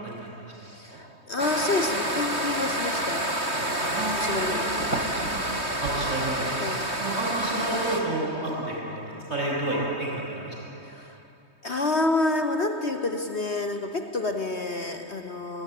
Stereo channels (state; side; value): late; right; 3.2 ms